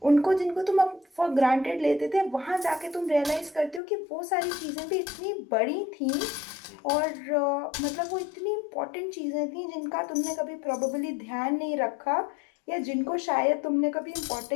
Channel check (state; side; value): drops out; right; at 3.8 s